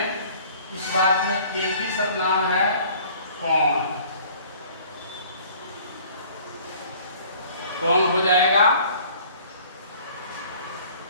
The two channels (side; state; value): both; inverted; correlation -0.52